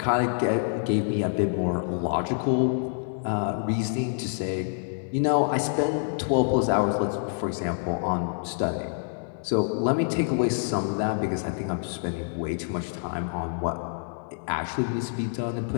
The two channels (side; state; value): right; silent; 60 dB below the other